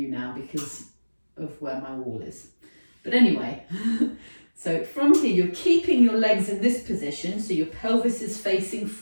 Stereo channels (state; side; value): inverted; both; correlation -1.00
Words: now because of where my wall is. But anyway, so from here, you're keeping your legs in this position, so your pelvis is facing